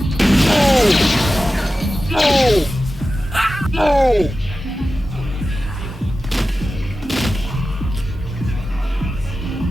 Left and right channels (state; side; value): normal; both; correlation 0.93